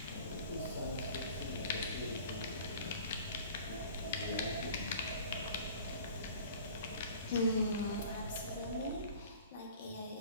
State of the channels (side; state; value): both; inverted; correlation -0.46